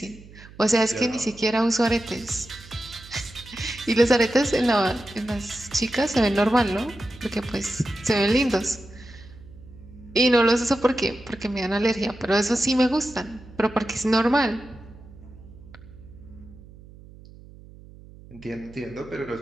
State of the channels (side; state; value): right; noise; hum, 20 dB below the sound